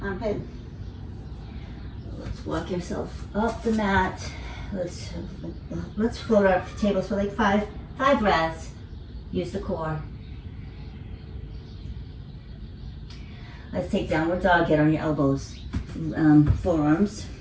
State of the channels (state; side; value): identical; both; correlation 1.00